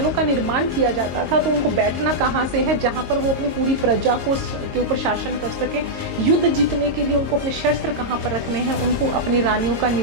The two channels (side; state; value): left; late; 22 ms